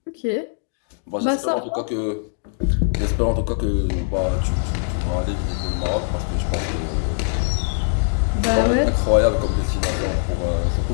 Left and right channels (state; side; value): silent; right; digital silence